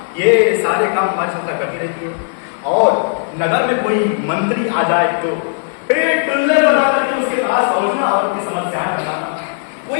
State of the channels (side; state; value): right; silent; 60 dB below the other